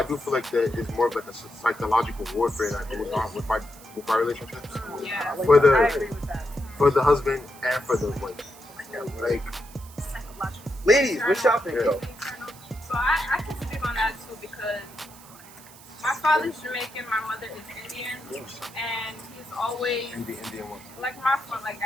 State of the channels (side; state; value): right; noise; hiss, 20 dB below the sound